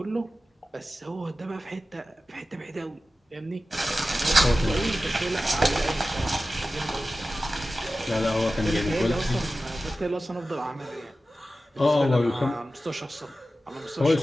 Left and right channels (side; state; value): both; normal; correlation 0.95